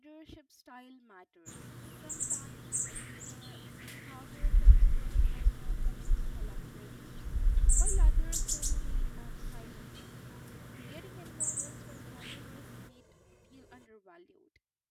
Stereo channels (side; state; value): both; identical; correlation 1.00